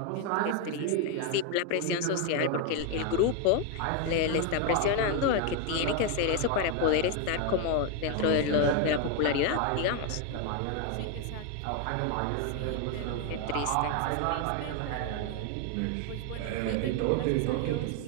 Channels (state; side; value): different; both; correlation 0.01